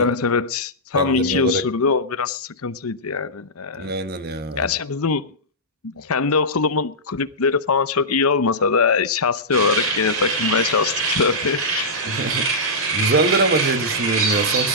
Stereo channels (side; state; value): both; normal; correlation -0.13